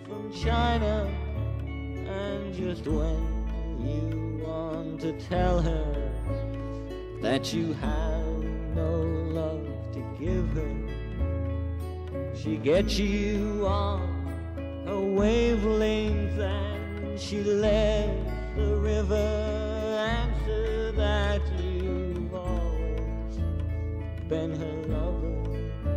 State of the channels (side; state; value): both; identical; correlation 1.00